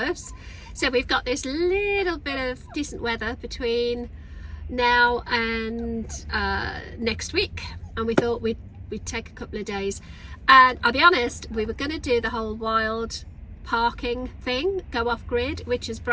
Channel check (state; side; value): identical; both; correlation 1.00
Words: So we've got this little bit of decent weather between now and next week, and we thought we'd take a couple of days. And I'll be honest, we were going to do the whole wild parking thing, go off grid, which is